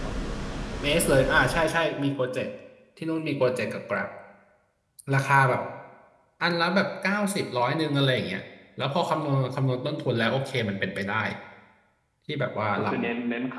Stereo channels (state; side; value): identical; both; correlation 1.00